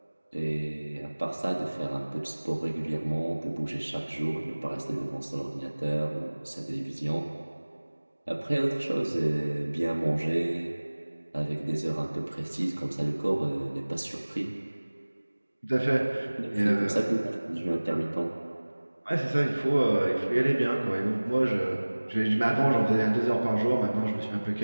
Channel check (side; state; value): both; inverted; correlation -1.00